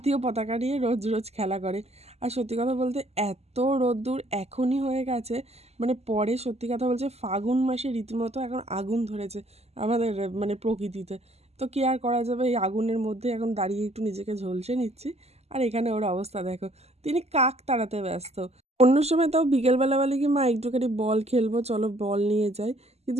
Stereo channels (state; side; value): late; left; 0.30 ms